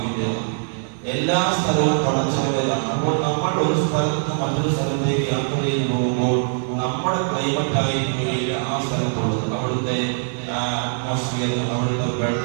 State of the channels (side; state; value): left; silent; 60 dB below the other